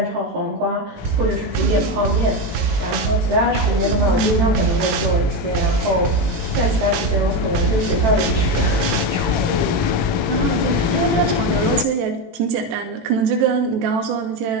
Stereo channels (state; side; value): late; left; 18 ms